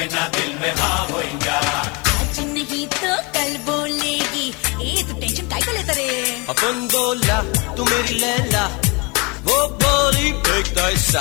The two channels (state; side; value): quieter; right; 28.8 dB